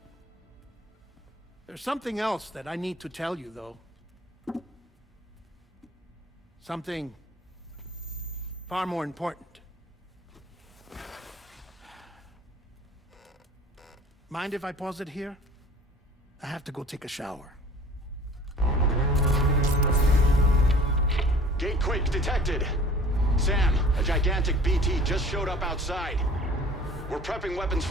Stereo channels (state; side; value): normal; both; correlation 0.47